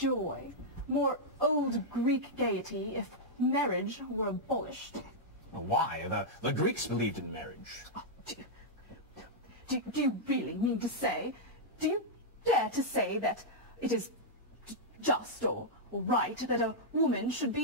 more old Greek gaiety if marriage were abolished? Well, why? The Greeks believed in marriage. Oh, do you really mean to say, do you dare to say that it is just or right that a woman should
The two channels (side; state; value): both; normal; correlation -0.07